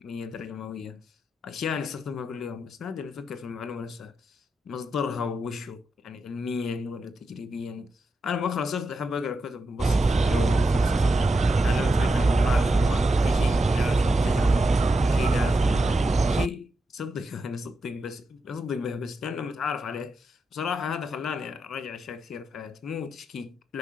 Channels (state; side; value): normal; both; correlation 0.87